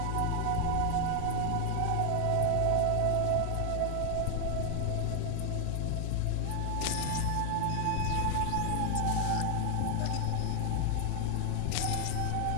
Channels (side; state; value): both; different; correlation 0.00